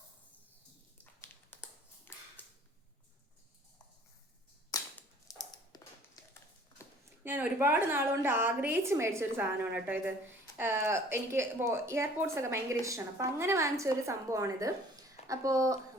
ഞാൻ ഒരുപാട് നാളുകൊണ്ട് ആഗ്രഹിച്ച് മേടിച്ചൊരു സാധനമാണ് കേട്ടോ ഇത്. എനിക്ക് എയർപോർട്സ് ഒക്കെ ഭയങ്കര ഇഷ്ടമാണ്. അപ്പം അങ്ങനെ വാങ്ങിച്ച ഒരു സംഭവമാണിത്. അപ്പോൾ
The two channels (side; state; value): both; normal; correlation 0.53